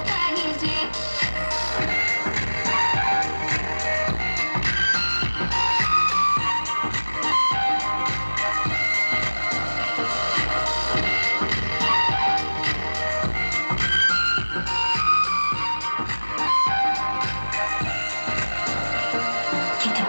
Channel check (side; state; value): both; inverted; correlation -1.00